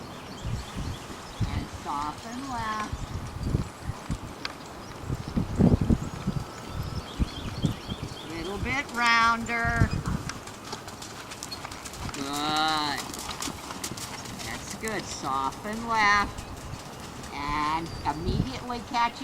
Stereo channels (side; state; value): both; identical; correlation 1.00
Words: And soften left. Little bit rounder. Good. That's good. Soften left. And immediately catch